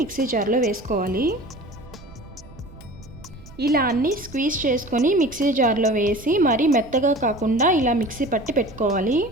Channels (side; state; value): right; noise; rumble, 19 dB below the sound